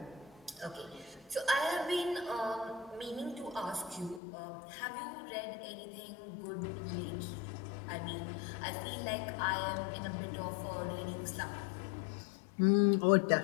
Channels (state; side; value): drops out; right; at 4.2 s